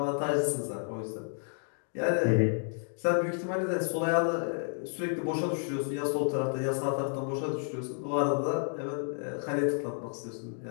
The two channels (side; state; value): right; silent; 57 dB below the other